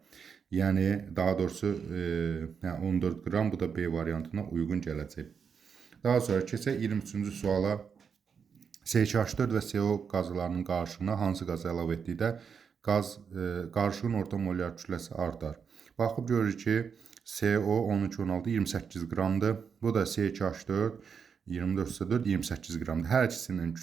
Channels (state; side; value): quieter; left; 6.5 dB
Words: Yəni, daha doğrusu 14 qram, bu da B variantına uyğun gələcək. Daha sonra keçək 23-cü suala. CH4 və CO qazlarının qarışığına hansı qazı əlavə etdikdə qarışığın orta molyar kütləsi artar. Baxıb görürük ki, CO 13,16 28 qramdır. Bu da CH4 24,4 28 qramdır. Hər ikisinin